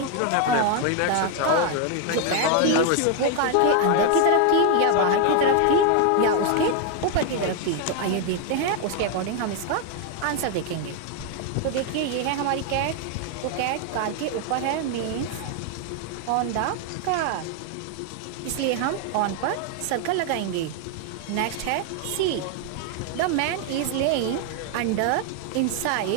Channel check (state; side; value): different; both; correlation 0.00